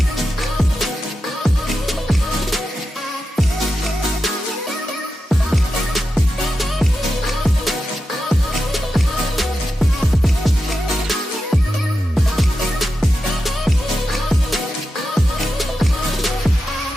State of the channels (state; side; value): normal; both; correlation 0.90